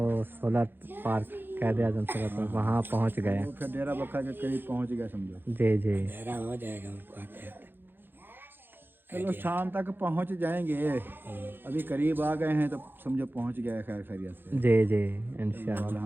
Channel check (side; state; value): left; late; 0.10 ms